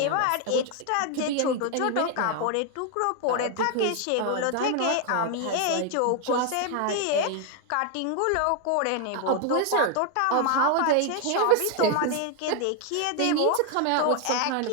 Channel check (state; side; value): different; both; correlation 0.00